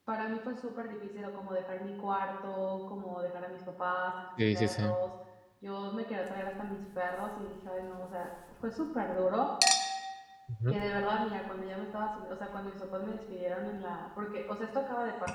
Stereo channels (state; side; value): identical; both; correlation 1.00